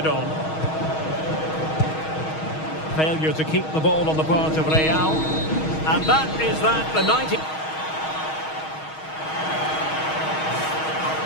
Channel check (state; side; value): late; right; 6.3 ms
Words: on. Failure to keep the ball on the part of Real. And that is that, the 90...